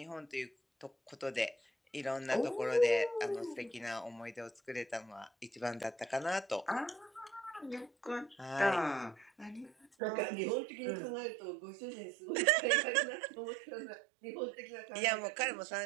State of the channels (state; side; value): drops out; left; at 9.9 s